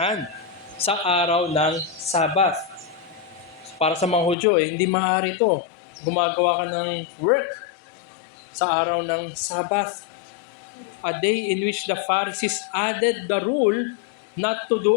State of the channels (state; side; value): drops out; right; at 4.4 s